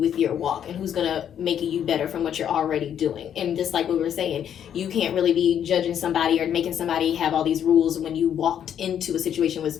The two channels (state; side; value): quieter; right; 9.3 dB